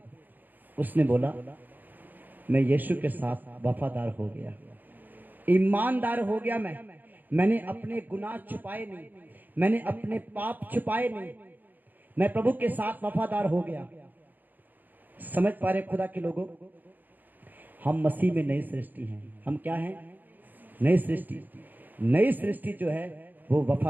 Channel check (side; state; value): left; late; 0.086 ms